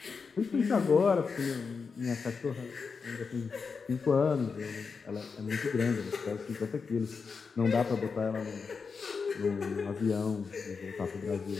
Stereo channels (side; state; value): right; quieter; 5.2 dB